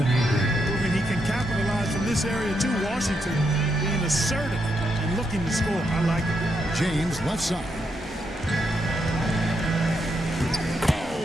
he can capitalize from this area too. Washington being assertive and looking to score. I like it. James left side.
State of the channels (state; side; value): normal; both; correlation 0.80